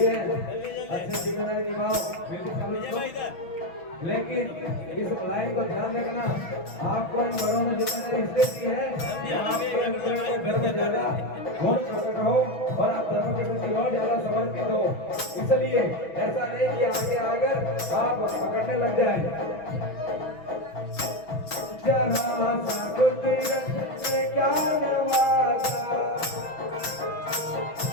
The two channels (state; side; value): late; right; 6.1 ms